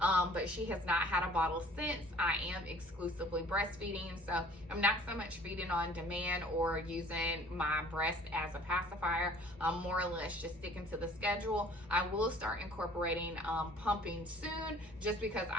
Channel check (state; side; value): normal; both; correlation 0.52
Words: But she has not had a bottle since. I am exclusively breastfeeding, so I'm not so much feeding on demand or using my breast as a pacifier. I'm more or less just sticking to the schedule. I will start incorporating pumping soon, just because